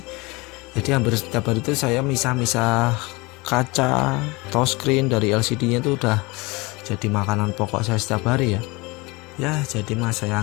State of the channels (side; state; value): right; quieter; 25.0 dB